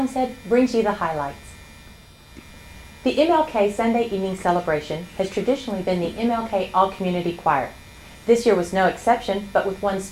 brings you the highlights. The MLK Sunday evening celebration has traditionally been the MLK All-Community Choir. This year was no exception, but with one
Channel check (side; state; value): both; identical; correlation 1.00